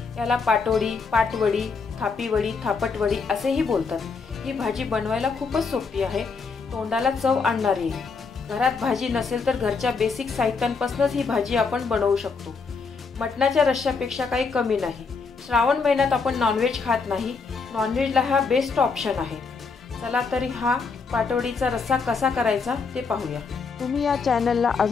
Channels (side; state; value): right; quieter; 4.9 dB